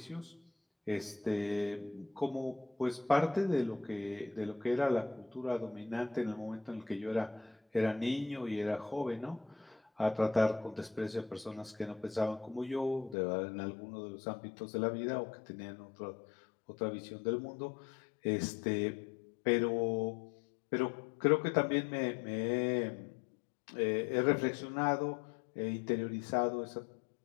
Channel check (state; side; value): drops out; right; at 13.2 s